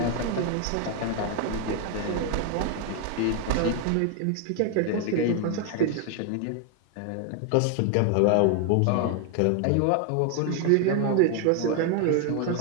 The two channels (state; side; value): different; both; correlation 0.00